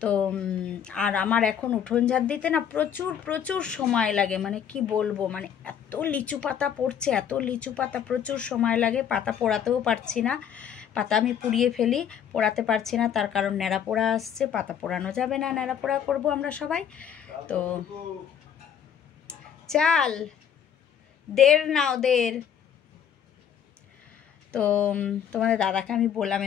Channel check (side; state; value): right; quieter; 8.6 dB